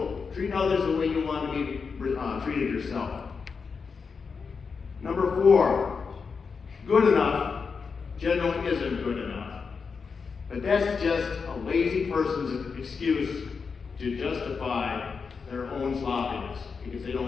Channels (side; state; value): right; quieter; 5.3 dB